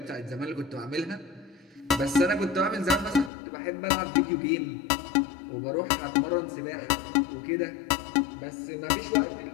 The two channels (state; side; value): drops out; right; at 3.3 s